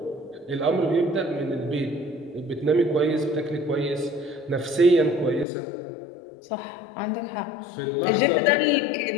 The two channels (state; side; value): drops out; right; at 5.5 s